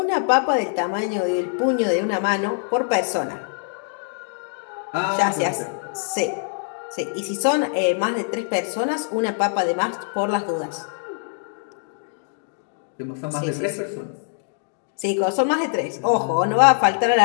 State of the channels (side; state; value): right; silent; digital silence